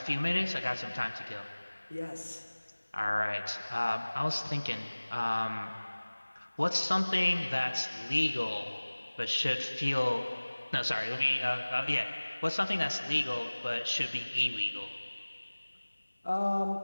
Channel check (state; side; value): inverted; both; correlation -1.00